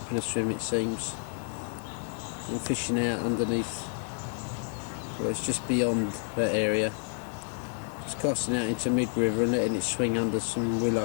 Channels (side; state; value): right; silent; 58 dB below the other